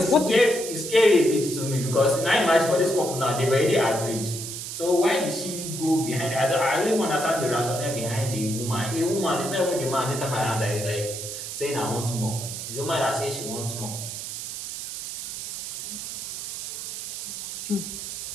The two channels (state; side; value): noise; right; hiss, 7 dB below the sound